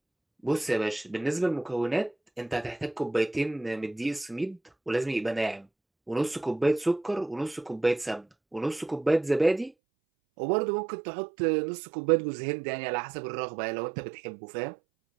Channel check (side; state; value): left; drops out; at 9.8 s